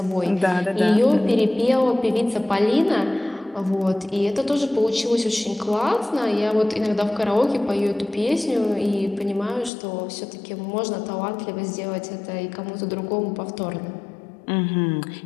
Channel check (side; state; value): right; drops out; at 9.7 s